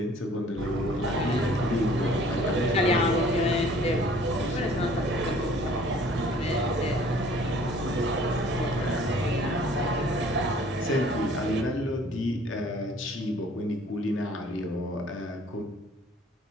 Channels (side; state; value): both; normal; correlation 0.54